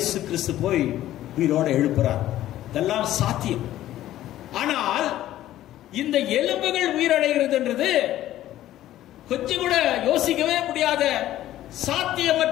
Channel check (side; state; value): right; quieter; 13.6 dB